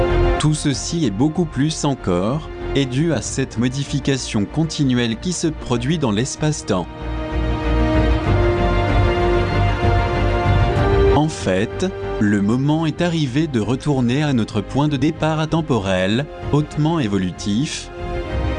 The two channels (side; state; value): both; identical; correlation 1.00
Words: Tout ceci et beaucoup plus encore est dû à cette modification continuelle qui se produit dans l'espace-temps. En fait, le moment est arrivé de retourner à notre point de départ atemporel, hautement évolutif,